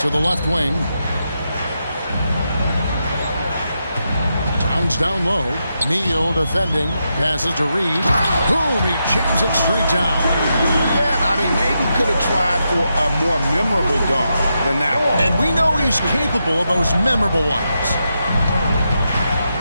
the left wing. Towns down low. Neal defending. Passes to Reed. Boom! He jams it straight down. Yeah, I mean, maybe could have tried for a more memorable dunk than that one. And we know he's capable of those memorable ones.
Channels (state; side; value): inverted; both; correlation -0.85